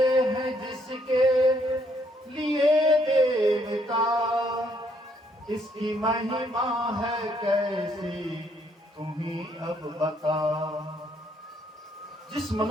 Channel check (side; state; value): both; normal; correlation 0.70